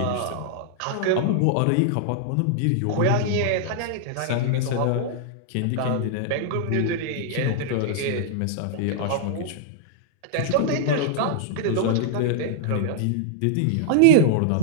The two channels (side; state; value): both; different; correlation -0.01